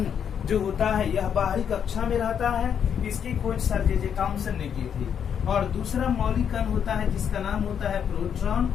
जो होता है यह बाहरी कक्षा में रहता है। इसकी खोज सर जे थॉम्सन ने की थी। और दूसरा मौलिक कण होता है जिसका नाम होता है प्रोटॉन,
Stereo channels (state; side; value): quieter; right; 8.1 dB